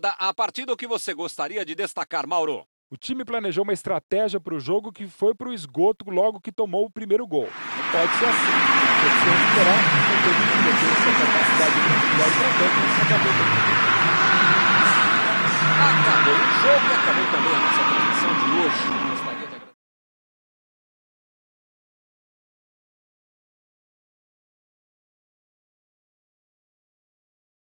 a partida, o que você gostaria de destacar, Mauro? O time planejou uma estratégia para o jogo que foi para o esgoto logo que tomou o primeiro gol. Não pode ser assim. Tem que se recuperar, não tem que ter essa capacidade de individual para tanto, mas acabou. Acabou o jogo e acabou também a nossa transmissão de hoje.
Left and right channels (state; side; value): inverted; both; correlation -1.00